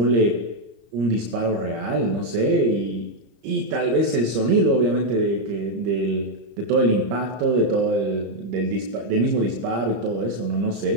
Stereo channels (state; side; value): late; left; 25 ms